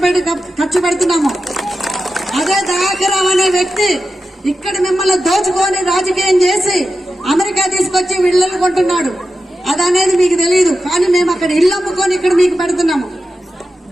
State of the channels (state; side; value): normal; both; correlation 0.91